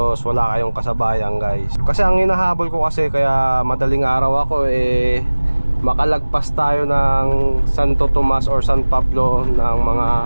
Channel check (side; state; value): both; inverted; correlation -1.00